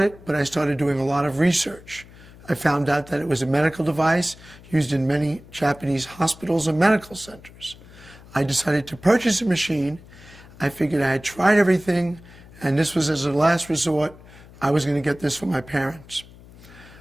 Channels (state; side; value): noise; left; hum, 21 dB below the sound